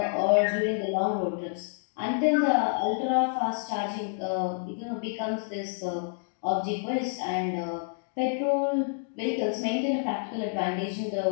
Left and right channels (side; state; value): right; silent; digital silence